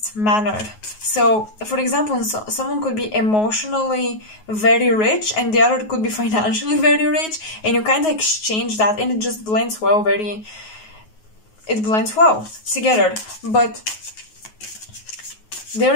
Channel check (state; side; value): late; right; 9.4 ms